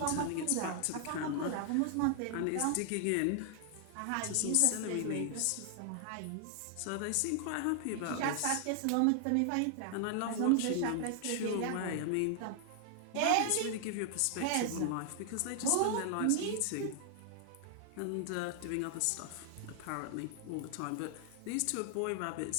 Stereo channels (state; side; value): different; both; correlation 0.00